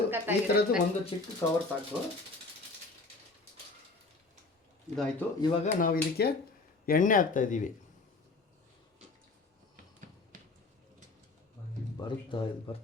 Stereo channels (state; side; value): quieter; right; 3.6 dB